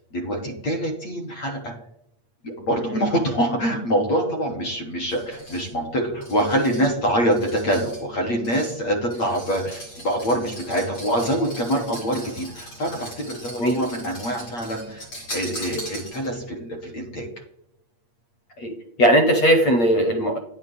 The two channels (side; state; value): right; late; 8.5 ms